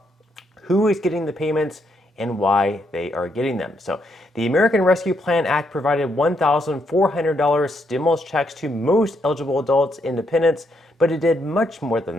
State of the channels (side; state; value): both; normal; correlation 0.76